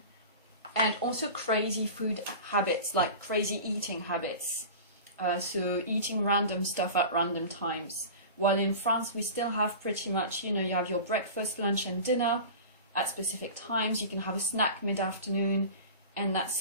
and also crazy food habits, like crazy eating habits. So eating random stuff at random times. While in France, we still have pretty much, you have your breakfast, lunch, and dinner at specific times. You can have a snack mid-afternoon, and that's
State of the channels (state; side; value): inverted; both; correlation -0.34